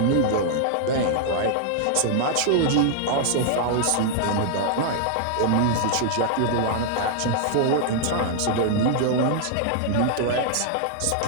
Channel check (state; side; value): different; both; correlation -0.01